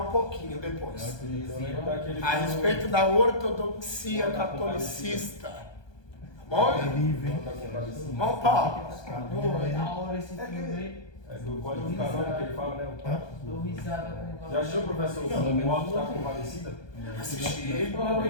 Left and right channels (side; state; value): right; late; 1.2 ms